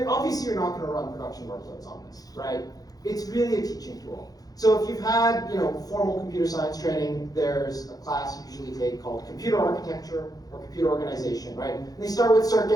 you're not going to run production workloads on this, right? It's really a teaching tool. So if you've had, formal computer science training, there's a class you usually take called computer architecture or computer organization, right? And they start with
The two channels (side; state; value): right; late; 0.18 ms